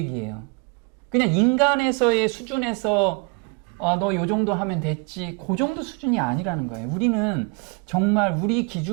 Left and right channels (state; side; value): quieter; left; 32.2 dB